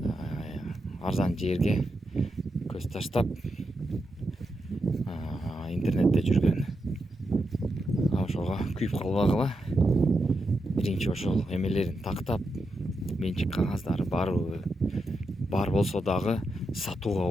арзан жерге көз таштап интернетте жүргөн. Ошого күйүп калбагыла. Биринчи ошол эмелерин тактап, менчик кагаздары барбы? Бар болсо дагы сатууга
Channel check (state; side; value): normal; both; correlation 0.86